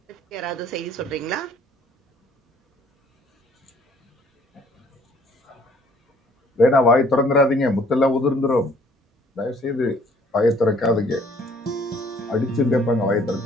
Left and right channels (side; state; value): both; normal; correlation 0.58